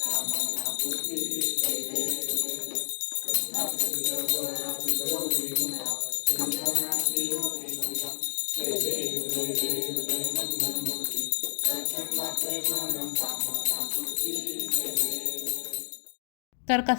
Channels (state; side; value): silent; right; 58 dB below the other